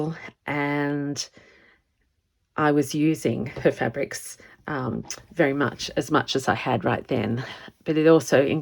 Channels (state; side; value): identical; both; correlation 1.00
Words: and I was using her fabrics very much as I had right then. But it also